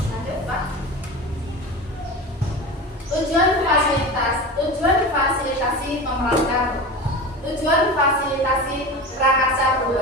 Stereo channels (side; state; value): both; normal; correlation 0.29